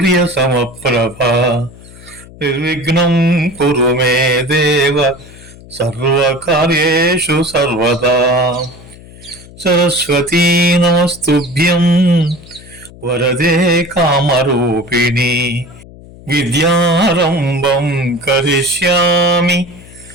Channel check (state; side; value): noise; left; hum, 20 dB below the sound